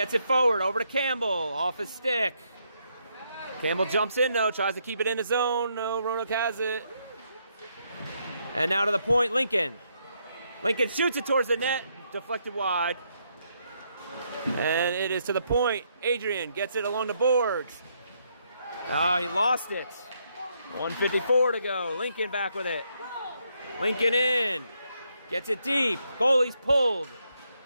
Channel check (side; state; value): both; inverted; correlation -0.76